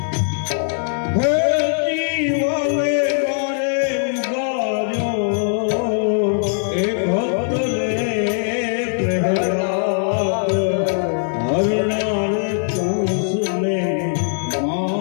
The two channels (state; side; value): silent; right; digital silence